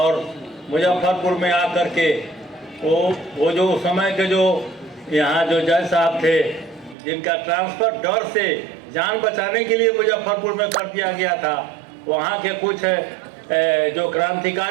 मुजफ्फरपुर में आकर के वो जो उस समय के जो यहाँ जो जज साहब थे, जिनका ट्रांसफ़र डर से जान बचाने के लिए मुजफ्फरपुर में कर दिया गया था, वहाँ के कुछ जो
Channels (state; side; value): drops out; left; at 7.0 s